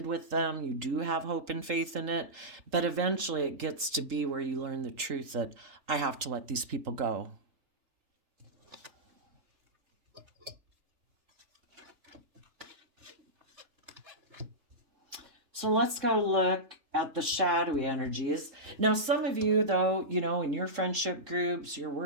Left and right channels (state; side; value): late; left; 3.4 ms